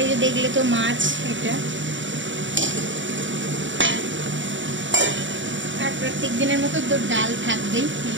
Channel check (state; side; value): late; left; 0.55 ms